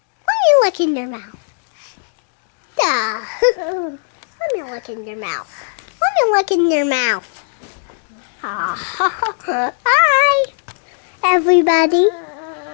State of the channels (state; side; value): silent; right; digital silence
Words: Why are you licking your mouth? Duh. Let me lick in your mouth. Let me lick in your mouth. Hi, everybody.